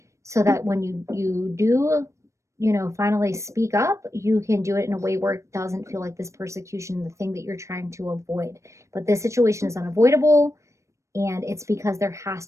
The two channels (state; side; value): late; left; 0.15 ms